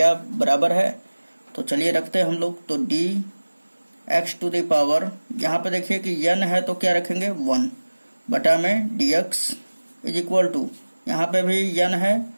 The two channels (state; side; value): inverted; both; correlation -1.00